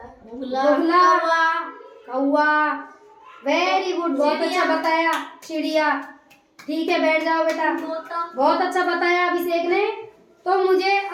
बुगला, कौवा। वेरी गुड, बहुत अच्छा बताया। चिड़िया। ठीक है, बैठ जाओ बेटा। बहुत अच्छा बताया अभिषेक ने। तो मुझे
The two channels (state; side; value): identical; both; correlation 1.00